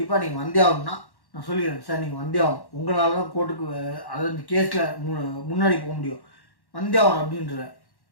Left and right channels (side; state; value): right; late; 1.1 ms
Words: நீங்கள் வந்தே ஆகணும்னா நான் சொல்லிடுறேன், சார் நீங்கள் வந்தே ஆகணும், உங்களால் தான் கோர்ட்டுக்கு அதாவது கேஸில் முன்னாடி போக முடியும், வந்தே ஆகணும் அப்படின்ற.